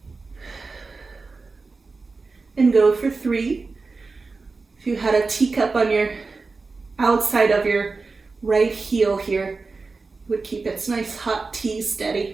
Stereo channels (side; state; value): left; quieter; 4.0 dB